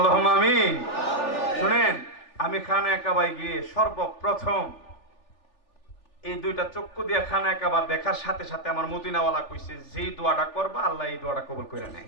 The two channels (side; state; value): right; late; 3.4 ms